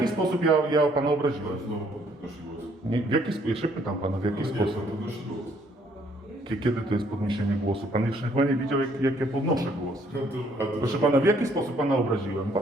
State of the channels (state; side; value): normal; both; correlation 0.65